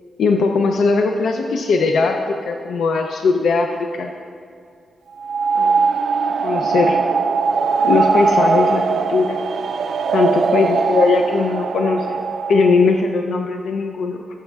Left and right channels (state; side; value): normal; both; correlation 0.78